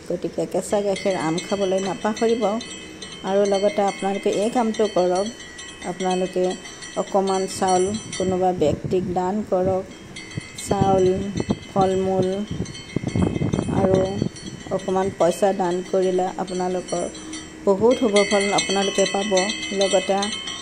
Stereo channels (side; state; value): both; identical; correlation 1.00